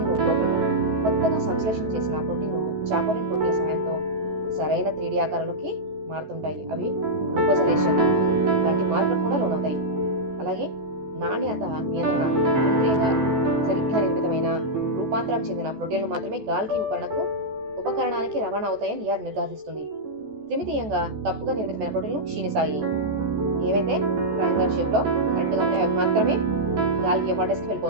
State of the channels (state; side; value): late; left; 14 ms